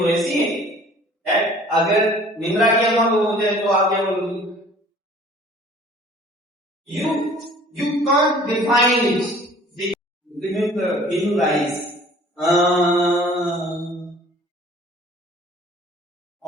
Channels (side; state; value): both; normal; correlation 0.51